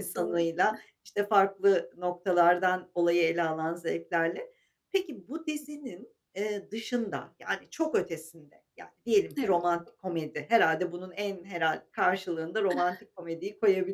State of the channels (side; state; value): both; identical; correlation 1.00